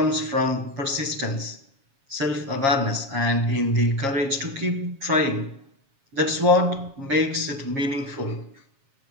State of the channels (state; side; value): late; left; 7.3 ms